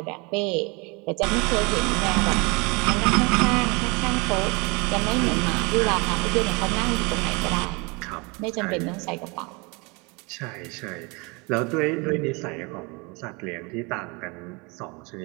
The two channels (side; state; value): left; quieter; 28.4 dB